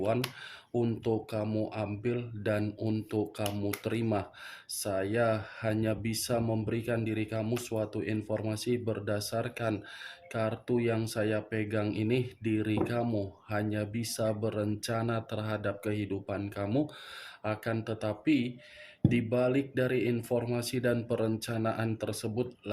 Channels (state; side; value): identical; both; correlation 1.00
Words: untuk kamu ambil dan untuk kamu terima. Saya hanya bisa memberikan diri kamu suatu informasi berdasarkan kartu yang saya pegang ini. Diri kamu hanya bisa berencana terhadap kehidupan kamu, akan tetapi di balik dari informasi dan perencanaan tersebut,